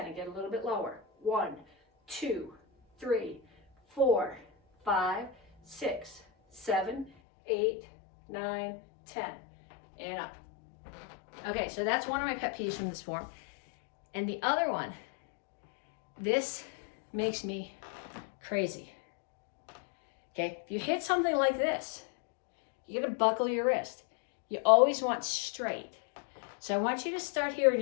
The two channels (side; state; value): right; drops out; at 7.1 s